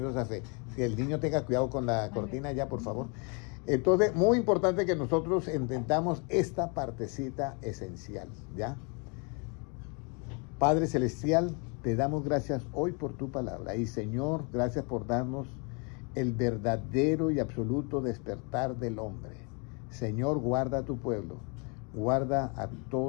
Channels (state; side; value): quieter; right; 34.3 dB